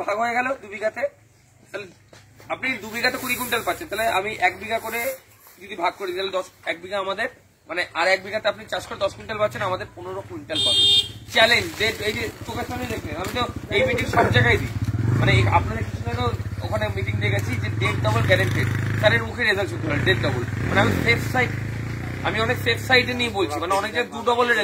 ভাগ হয়ে গেল 2 বিঘাতে, তাহলে আপনি 2 বিঘাতে 20 কুইন্টাল পাচ্ছেন। তাহলে আমি 1 বিঘা করে যদি ভাগ করি তাহলে 1 বিঘা আমাদের, মানে আর 1 বিঘাতে আপনি চাষ করে 10 কুইন্টাল পাচ্ছেন, আমাদের 15 কুইন্টাল পাবেন। চ্যালেঞ্জ, এই যে চোখের সামনে দেখলেন, আমি তো এই মিটিং সব জায়গায় দিই, মানে আপনাদের কিছু ওখানে মিটিং দেখেছি যে ডেট ডবল গ্যারেন্টেড, স্যারের মুখে রেজাল্ট শুনতে হয় ডেট ডবল। মানে আমি অনেক সেফ সাইডে নিয়ে বলছি, মানে অনেক জায়গায় 2 ডবলের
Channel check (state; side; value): identical; both; correlation 1.00